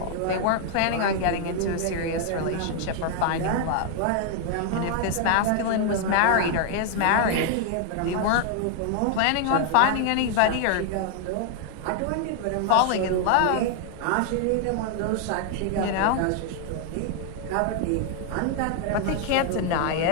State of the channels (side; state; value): both; different; correlation 0.00